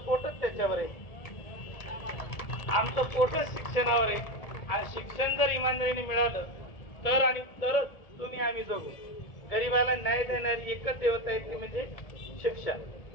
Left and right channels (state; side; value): late; right; 1.7 ms